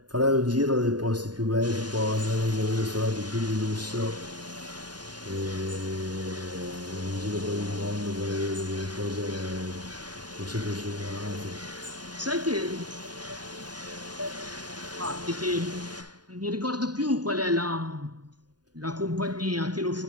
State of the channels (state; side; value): late; left; 0.70 ms